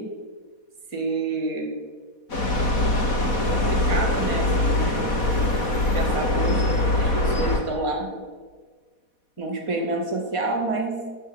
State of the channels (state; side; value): late; right; 4.1 ms